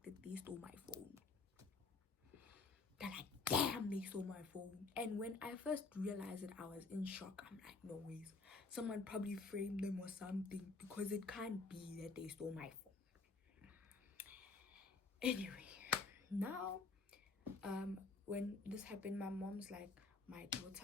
that they stole my phone. They're like, damn, they stole my phone. And when I first realized it, I was in shock. I'm like, no ways. Someone probably framed them or something, because it can't be that they stole my phone. Anyway, now, when this happened, my mom's like, my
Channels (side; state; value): right; quieter; 4.0 dB